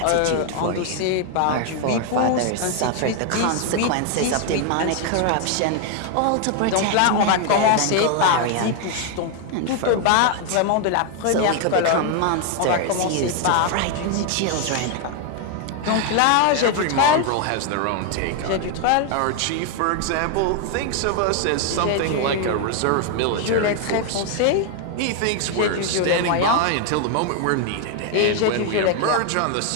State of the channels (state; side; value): different; both; correlation 0.01